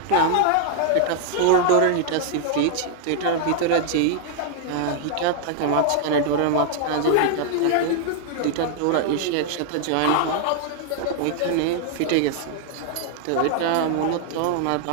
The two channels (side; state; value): both; different; correlation 0.00